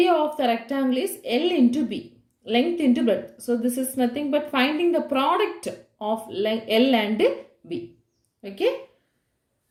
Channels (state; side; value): identical; both; correlation 1.00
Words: of the rectangle is L into B. Length into breadth. So this is nothing but finding the product of L and B. Okay.